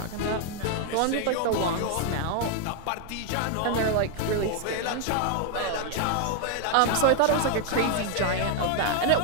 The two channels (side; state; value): both; different; correlation 0.00